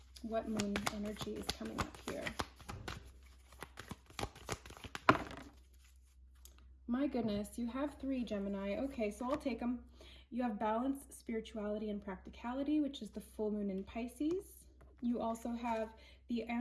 What moon energy is coming up here? My goodness, you have 3, Gemini. Okay, so I'll take them. You have balance, spirituality, and practicality, which is the full moon in Pisces. You also have the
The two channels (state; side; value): identical; both; correlation 1.00